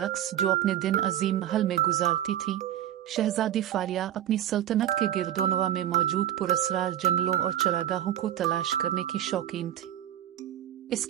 जो अपने दिन अजीम महल में गुजारती थी, शहजादी फारिया अपनी सल्तनत के गिरदोनवा में मौजूद पुरस्रार जंगलों और चरागाहों को तलाश करने की शौकीन थी।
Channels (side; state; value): left; quieter; 11.6 dB